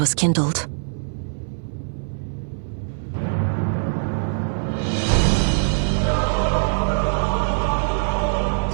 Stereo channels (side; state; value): left; silent; 59 dB below the other